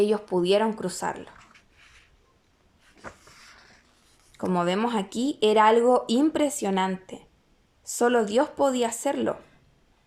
pudieron cruzarlo. Como vemos aquí, era algo impresionante. Solo Dios podía hacerlo,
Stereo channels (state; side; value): identical; both; correlation 1.00